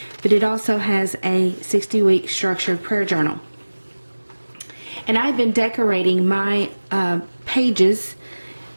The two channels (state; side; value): inverted; both; correlation -1.00